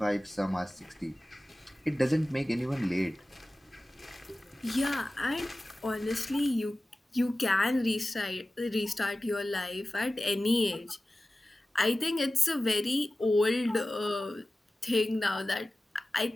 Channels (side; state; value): both; normal; correlation 0.96